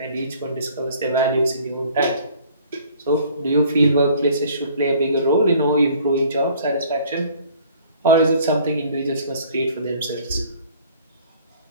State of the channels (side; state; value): both; inverted; correlation -0.54